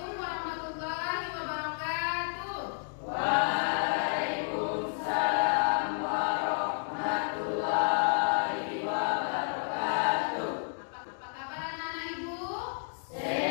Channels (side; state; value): right; silent; digital silence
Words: warahmatullahi wabarakatuh. Waalaikumsalam warahmatullahi wabarakatuh. Apa kabar anak-anak ibu?